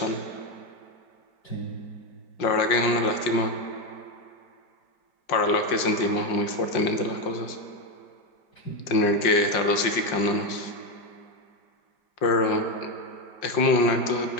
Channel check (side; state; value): right; late; 5.5 ms